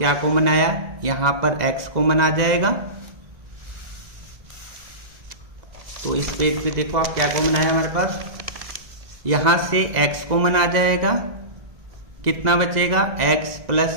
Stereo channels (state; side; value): late; left; 2.0 ms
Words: कॉमन आया, यहां पर x कॉमन आ जाएगा। तो इस पेज पे देखो आप क्या कॉमन आया हमारे पास, यहां से x कॉमन आ जाएगा, कितना बचेगा, x प्लस